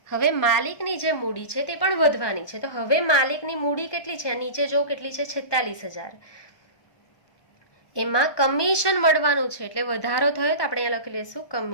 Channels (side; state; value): right; late; 1.2 ms